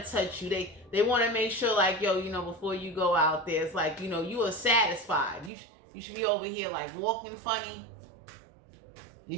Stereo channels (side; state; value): left; drops out; at 5.5 s